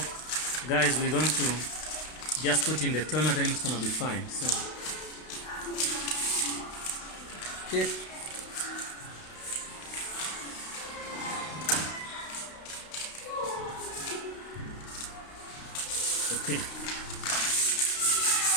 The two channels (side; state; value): right; late; 32 ms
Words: guys, we're going to just put in the toner, then it's gonna be fine. So okay. Okay.